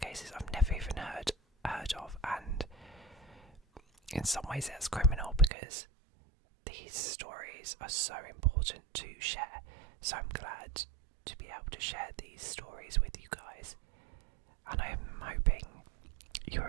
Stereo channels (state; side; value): drops out; left; at 5.5 s